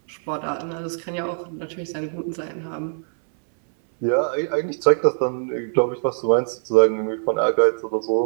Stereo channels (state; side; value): silent; left; 63 dB below the other